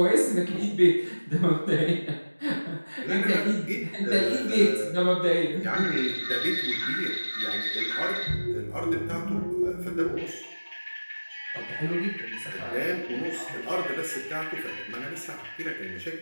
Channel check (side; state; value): both; inverted; correlation -1.00